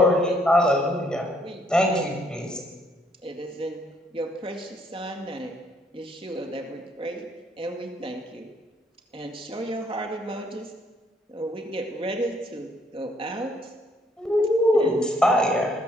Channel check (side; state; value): both; normal; correlation 0.68